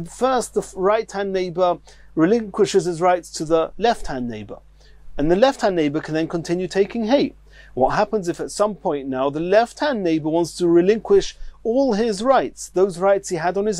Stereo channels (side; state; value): both; identical; correlation 1.00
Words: right-hand neighbor relinquishes his rights to the left-hand neighbor, and the left-hand neighbor can then continue taking hay. What happens if at some point now the left-hand neighbor wants to relinquish all his rights, those rights he had on